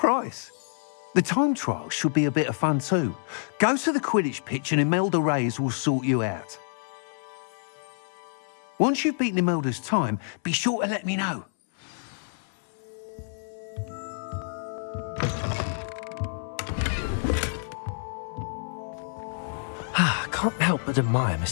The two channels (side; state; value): right; silent; 60 dB below the other